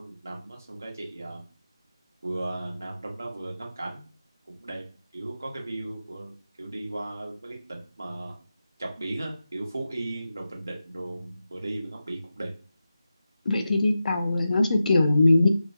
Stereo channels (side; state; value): both; inverted; correlation -0.92